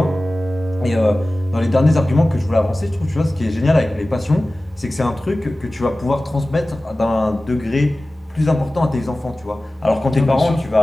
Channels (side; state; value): both; normal; correlation 0.97